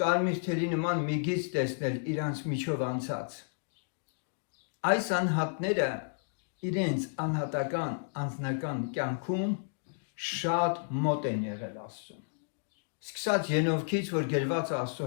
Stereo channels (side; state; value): right; silent; digital silence